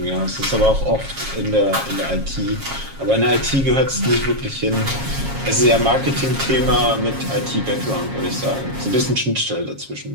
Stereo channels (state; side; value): late; left; 7.3 ms